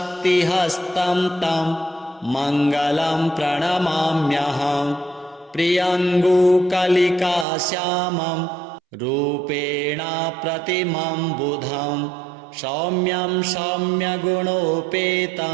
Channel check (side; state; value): left; drops out; at 7.5 s